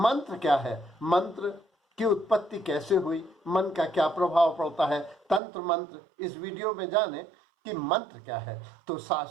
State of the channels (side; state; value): left; drops out; at 5.4 s